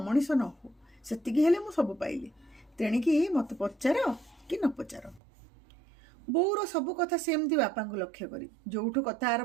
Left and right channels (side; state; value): left; drops out; at 5.2 s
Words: ନ ହୁଅ। ସେତିକି ହେଲେ ମୁଁ ସବୁ ପାଇଲି। ତେଣିକି ମୋତେ ପଚାର କି ନ ପଚାର। ବୋଉର ସବୁ କଥା ସେମିତି ବାପାଙ୍କୁ ଲକ୍ଷ୍ୟ କରି ଯୋଉଠୁ କଥା